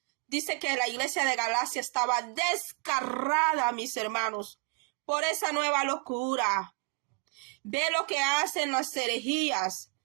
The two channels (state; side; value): quieter; left; 32.8 dB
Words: Dice que la iglesia de Galacia estaba desgarrada, mis hermanos, por esa nueva locura. Ve lo que hacen las herejías.